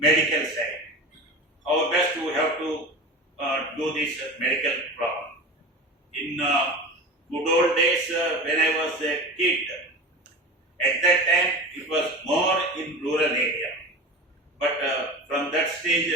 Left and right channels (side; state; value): both; normal; correlation 0.30